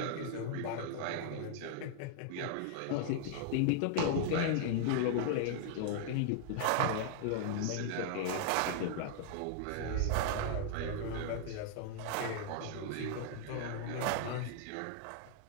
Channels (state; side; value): different; both; correlation 0.00